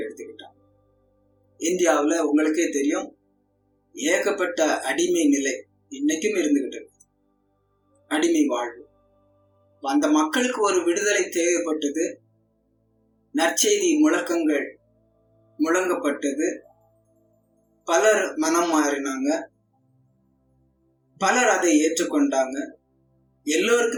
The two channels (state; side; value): identical; both; correlation 1.00